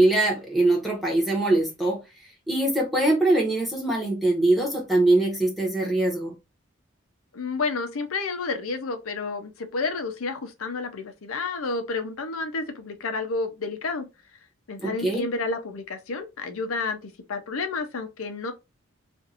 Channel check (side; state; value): both; normal; correlation 0.61